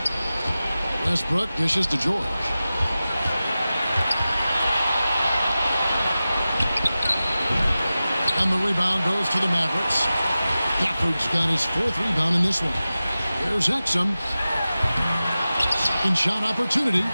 Westbrook dishes to George. And the rebound goes to the Mavericks. Gafford's got his 4th rebound in this one. Here's Exum. Second shot opportunity.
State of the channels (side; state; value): both; inverted; correlation -0.95